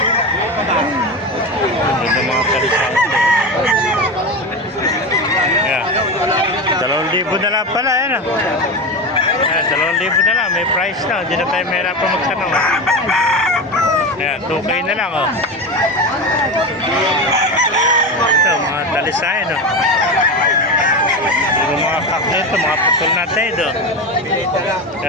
Ganda ng mga kalisante. Yeah. 2,000 na lang pala, yan, oh. Ayan, 2,000 na lang. May price na. Hindi na tayo mahirapan magtanong, oh. Ayan, 2K na lang, oh. Ito, mga talisayan, oh. Yung mga kak nito, mga putol natin, oh.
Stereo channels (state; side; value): normal; both; correlation 0.21